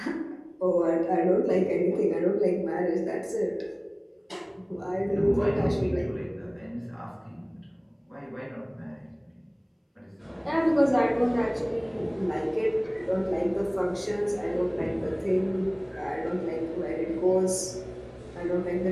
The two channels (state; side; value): identical; both; correlation 1.00